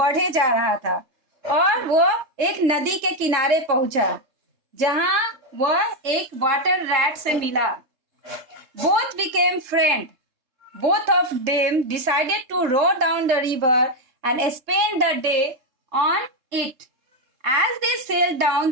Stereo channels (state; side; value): late; left; 3.3 ms